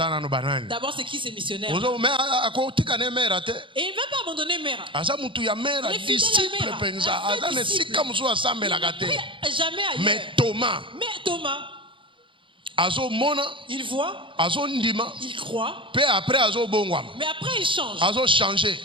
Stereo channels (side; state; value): left; late; 0.25 ms